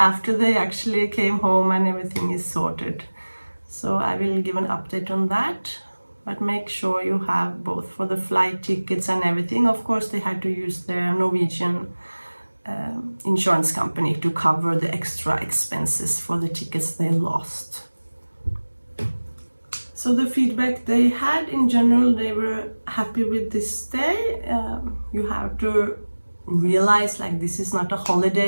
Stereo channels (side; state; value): both; inverted; correlation -1.00